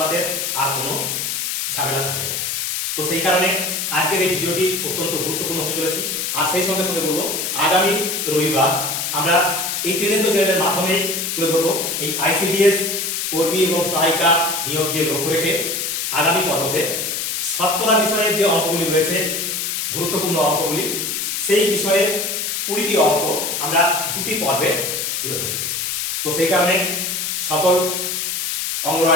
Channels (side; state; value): left; noise; hiss, 1 dB below the sound